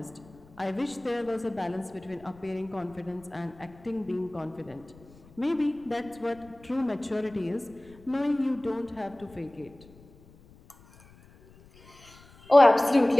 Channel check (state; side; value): noise; left; rumble, 25 dB below the sound